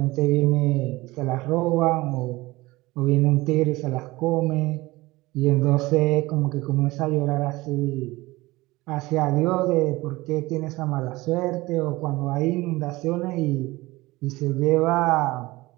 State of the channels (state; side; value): quieter; left; 20.2 dB